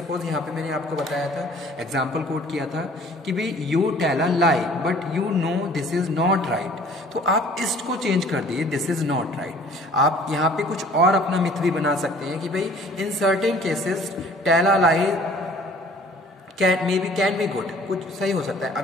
यहाँ पे मैंने आपको बताया था, एग्जाम्पल कोट किया था कि भाई you tell a lie but you know this is not right, तो आप इसको चेंज कर दिए, दिस इज नॉट राइट। आप यहाँ पे कुछ और अपना मिथ भी बना सकते हैं कि भाई in certain cases tell a lie can be good, कुछ सही हो सकता है।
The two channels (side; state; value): both; normal; correlation 0.53